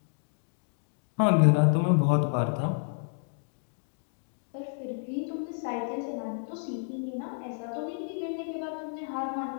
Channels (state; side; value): silent; right; digital silence